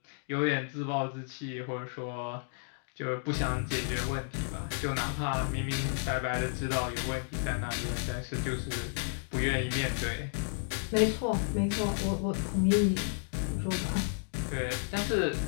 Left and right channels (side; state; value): right; silent; digital silence